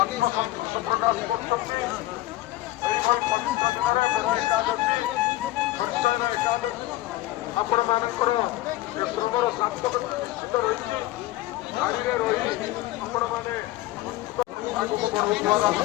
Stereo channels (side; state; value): right; quieter; 16.6 dB